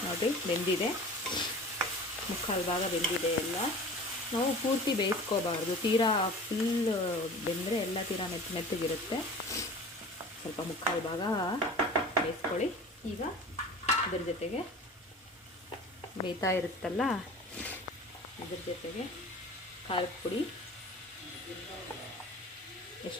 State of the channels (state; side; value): normal; both; correlation 0.39